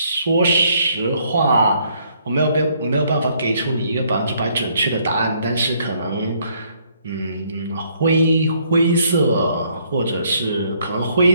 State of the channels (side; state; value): both; inverted; correlation -0.67